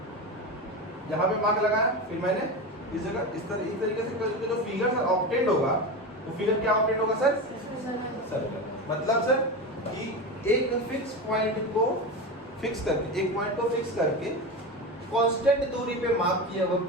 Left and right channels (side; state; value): both; normal; correlation 0.21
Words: यहाँ पे मार्क लगाया, फिर मैंने इस जगह इस तरीके से जो फिगर सर ऑब्टेंड होगा, वो फिगर क्या ऑब्टेंड होगा सर, सर्कल। मतलब सर कि एक फिक्स पॉइंट को फिक्स करके, एक पॉइंट को फिक्स करके कांस्टेंट दूरी पे मार्क किए हुए